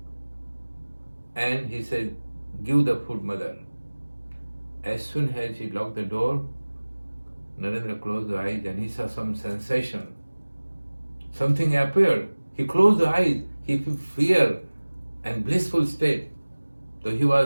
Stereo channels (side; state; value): both; inverted; correlation -1.00